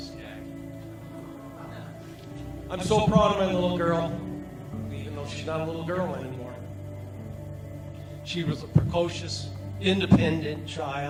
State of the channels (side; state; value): both; identical; correlation 1.00